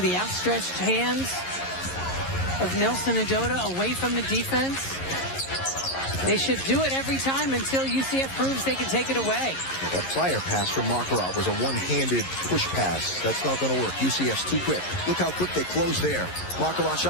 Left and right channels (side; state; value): right; late; 11 ms